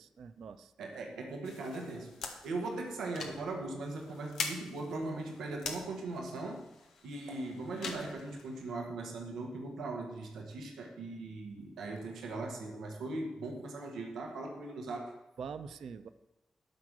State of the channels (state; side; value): normal; both; correlation 0.75